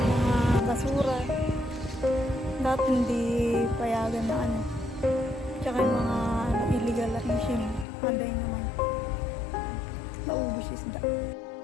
mga basura. Dati hindi payagan na tsaka yung mga illegal fishing. Panday naman. Naubos isda.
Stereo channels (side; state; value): right; drops out; at 7.9 s